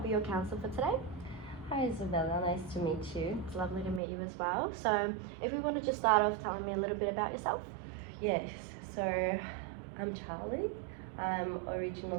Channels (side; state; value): left; drops out; at 4.0 s